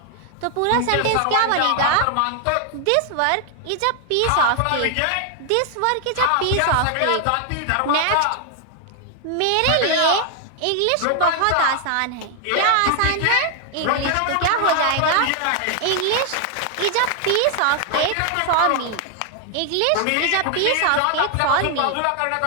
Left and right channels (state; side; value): different; both; correlation 0.00